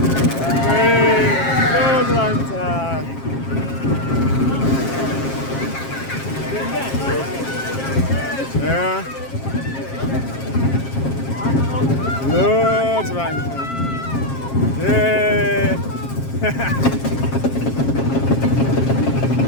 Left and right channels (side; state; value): right; late; 7.5 ms